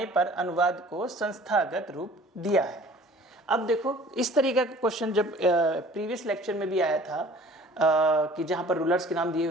पर अनुवाद को संस्थागत रूप दिया है? अब देखो, इस तरीके का क्वेश्चन जब प्रीवियस लेक्चर में भी आया था कि जहाँ पर रूलर्स के नाम दिए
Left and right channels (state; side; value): normal; both; correlation 0.49